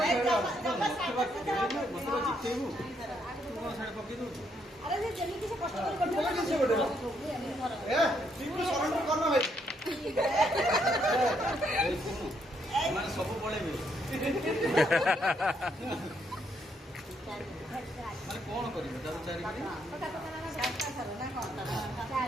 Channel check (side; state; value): both; normal; correlation 0.74